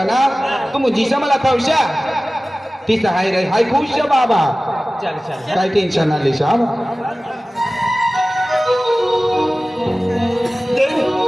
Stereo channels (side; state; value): both; normal; correlation 0.97